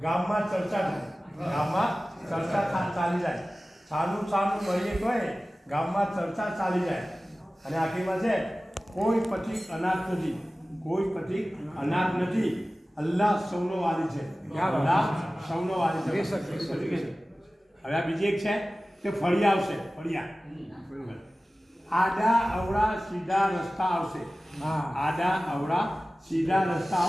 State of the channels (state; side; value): normal; both; correlation 0.96